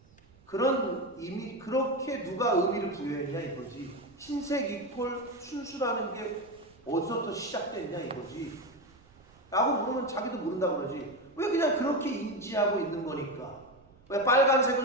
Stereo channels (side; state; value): right; noise; rumble, 28 dB below the sound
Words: 그런 이미 그렇게 누가 의미를 부여했냐 이거지. 흰색 이퀄 순수라는 게 어디서부터 시작됐냐 이거지. 라고 물으면 자기도 모른다 그러지. 왜 그냥 그렇게 인지하고 있는 거니까. 왜 빨간색은